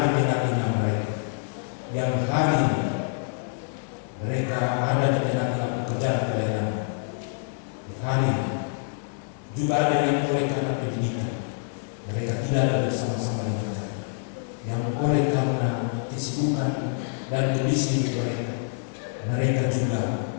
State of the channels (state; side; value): silent; right; 61 dB below the other